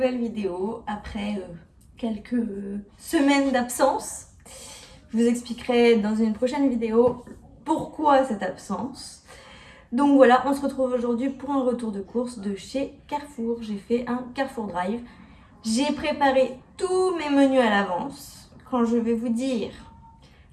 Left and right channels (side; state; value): both; identical; correlation 1.00